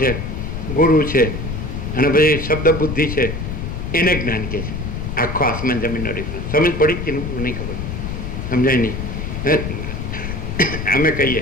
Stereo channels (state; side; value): noise; left; rumble, 5 dB below the sound